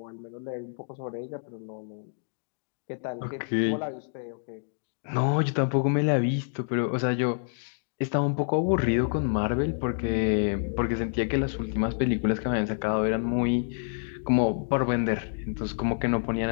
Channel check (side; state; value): right; silent; digital silence